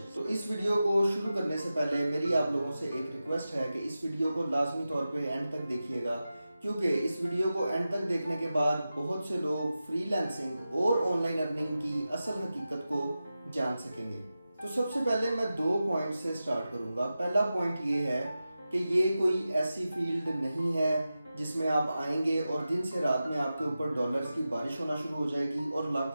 तो इस वीडियो को शुरू करने से पहले मेरी आप लोगों से एक रिक्वेस्ट है कि इस वीडियो को लाजमी तौर पे एंड तक देखिएगा, क्योंकि इस वीडियो को एंड तक देखने के बाद बहुत से लोग फ्रीलांसिंग और ऑनलाइन अर्निंग की असल हकीकत को जान सकेंगे। तो सबसे पहले मैं 2 पॉइंट से स्टार्ट करूंगा। पहला पॉइंट ये है कि ये कोई ऐसी फील्ड नहीं है जिसमें आप आएंगे और दिन से रात में आपके ऊपर डॉलर्स की बारिश होना शुरू हो जाएगी और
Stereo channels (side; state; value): both; inverted; correlation -0.93